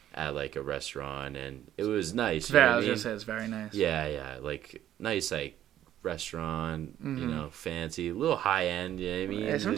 at like a restaurant, and it was nice. You know I what I was mean? gonna say it's very nice. Yeah, like nice like restaurant, fancy, a little high end. You know what I mean? Yeah,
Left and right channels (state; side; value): quieter; left; 11.8 dB